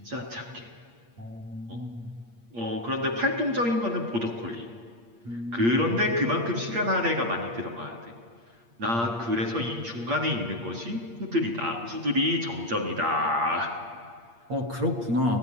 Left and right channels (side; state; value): left; late; 8.6 ms